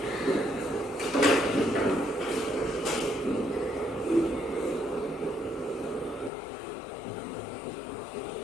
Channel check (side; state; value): right; drops out; at 6.3 s